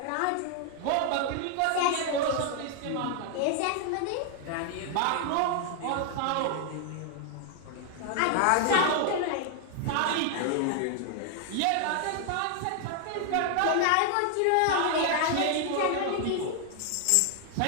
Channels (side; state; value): both; different; correlation 0.00